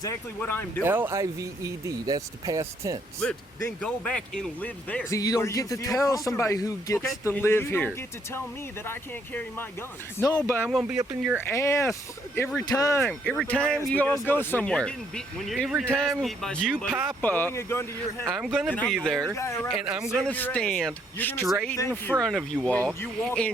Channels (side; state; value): both; normal; correlation 0.70